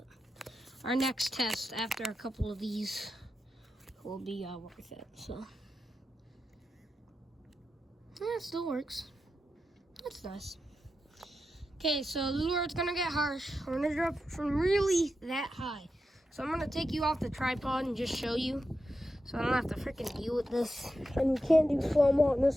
our next test after a couple of these will be worth it. So yeah, it still works. That's nice. Okay, so the lure's gonna get harsh. We're gonna drop from really that high. So I'm gonna take you off the tripod and just show you, so I don't have to freaking deal with this. And we can't do slow-mo on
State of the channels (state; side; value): normal; both; correlation 0.89